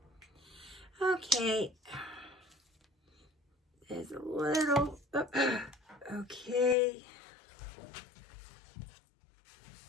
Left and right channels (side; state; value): right; drops out; at 6.8 s